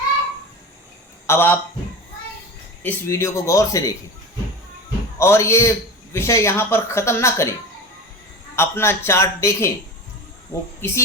अब आप इस वीडियो को गौर से देखें और ये विषय यहाँ पर ख़त्म ना करें। अपना चार्ट देखें, वो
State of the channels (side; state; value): both; normal; correlation 0.29